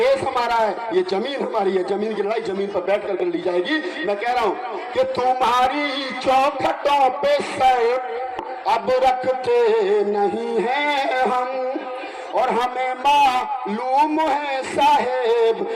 हमारा है, ये जमीन हमारी है, जमीन की लड़ाई जमीन पर बैठ कर ली जाएगी। मैं कह रहा हूँ कि तुम्हारी चौखटों पे सर अब रखते नहीं है हम, और हमें मालूम है साहेब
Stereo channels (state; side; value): identical; both; correlation 1.00